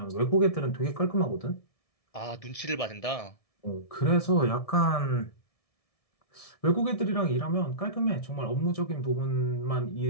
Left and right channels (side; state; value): right; late; 1.7 ms